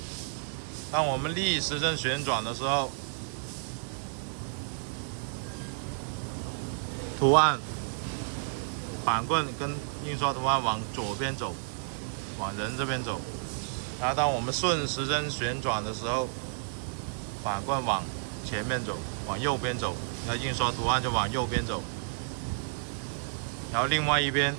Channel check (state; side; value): silent; left; 57 dB below the other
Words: 当我们逆时针旋转的时候，图案板棍跟印刷图案往左边走，往人这边走。然后当我们顺时针旋转的时候，板棍往前面走，往右边走，然后印刷图案就往右边走。然后另外一边